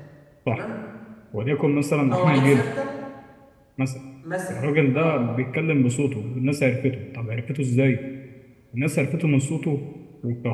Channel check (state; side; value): identical; both; correlation 1.00